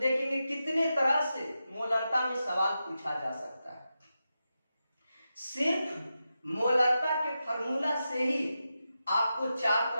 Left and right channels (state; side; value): inverted; both; correlation -0.90